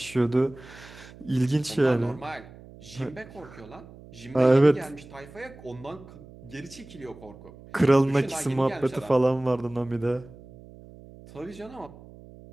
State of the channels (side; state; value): right; noise; hum, 20 dB below the sound